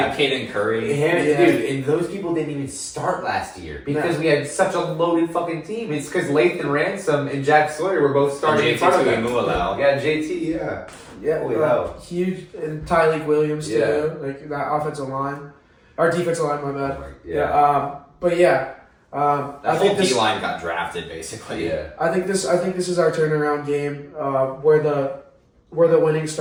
Caden Curry. Yeah. Dude, and those people didn't even start last year because we had such a loaded fucking team. It's because Lathan Ransom and Jack Sawyer were both starting in front of them. Tuimualau. Yeah, JT, yeah. Yeah, Holy hell. huge, and Tyleek Williams too. Yeah. Like that offensive line, our defensive line. My bad. Yeah. But yeah, That I whole think D this. line got drafted basically. Yeah. I think this is our turnaround game, where the winning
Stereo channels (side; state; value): both; identical; correlation 1.00